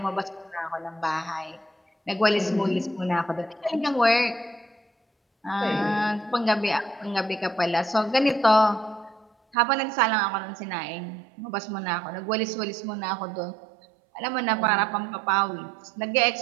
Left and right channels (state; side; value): drops out; left; at 9.6 s